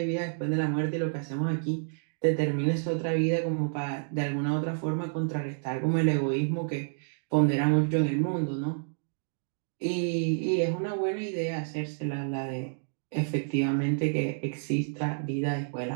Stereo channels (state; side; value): silent; left; digital silence